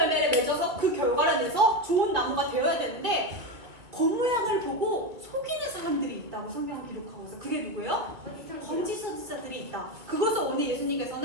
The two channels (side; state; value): left; late; 2.3 ms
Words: 맺어서 그 결과를 내서 좋은 나무가 되어야 되는데, 겉모양을 보고 속이는 사람들이 있다고 성경은 기록하고 있어요. 그게 누구예요? 거짓 선지자들이 있다. 그것을 오늘